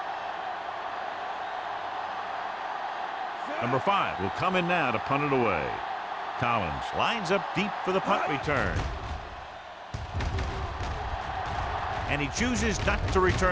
Number 5 will come in now to punt it away. Collins lines up deep for the punt return. And he chooses not to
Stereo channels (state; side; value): identical; both; correlation 1.00